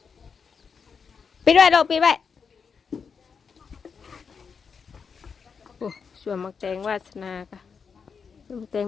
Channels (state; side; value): quieter; right; 5.9 dB